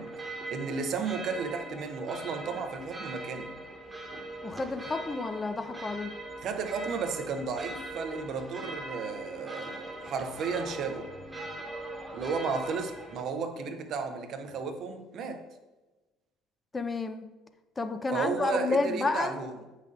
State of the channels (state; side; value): normal; both; correlation 0.64